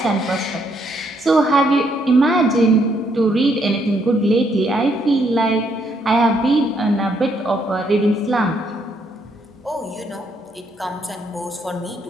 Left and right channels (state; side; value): normal; both; correlation 0.72